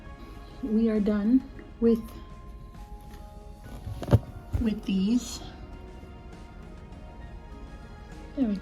we are done with these. There we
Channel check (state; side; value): identical; both; correlation 1.00